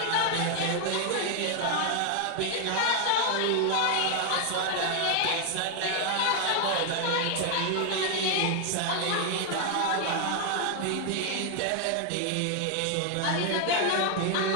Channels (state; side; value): different; both; correlation 0.00